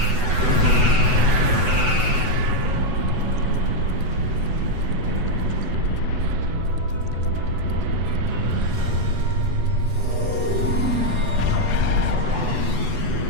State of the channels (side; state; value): left; late; 8.0 ms